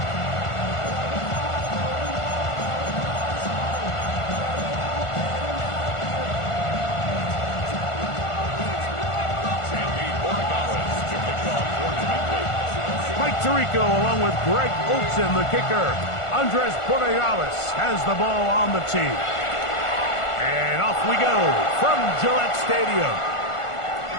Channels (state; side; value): late; right; 1.5 ms